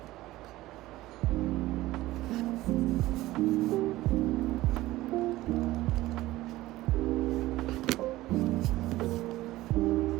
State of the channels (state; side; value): quieter; left; 17.2 dB